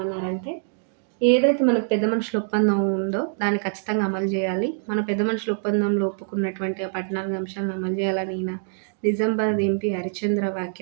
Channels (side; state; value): left; silent; digital silence